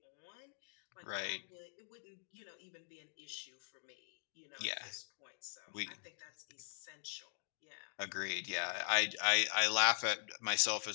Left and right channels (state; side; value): silent; right; digital silence